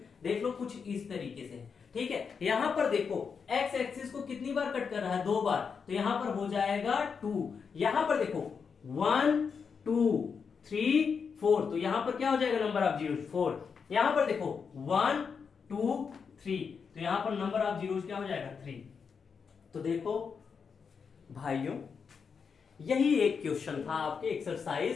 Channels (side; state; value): right; quieter; 6.0 dB